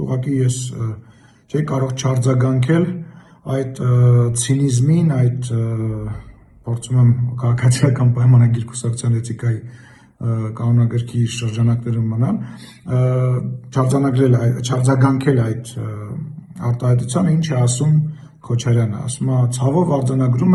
ուղղակի ես չէի կարող չարձագանքել այդ ցինիզմին, այդ փորձում եմ քաղաքացիական պայմանագիր կուսակցության էթիկայի կանոնագրքի շրջանակներում մնալ, չարձագանքել այդ արտահայտությանը, ինչ է ասում Քոչարյանը, ասում է, ցավով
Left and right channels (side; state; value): both; identical; correlation 1.00